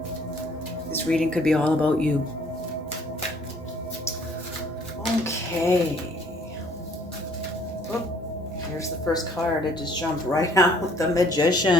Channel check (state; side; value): normal; both; correlation 0.59